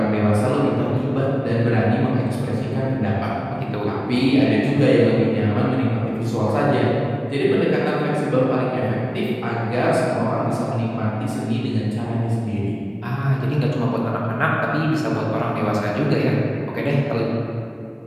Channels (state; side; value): identical; both; correlation 1.00